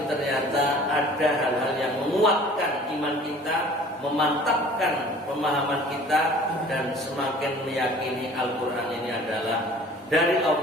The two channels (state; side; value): normal; both; correlation 0.48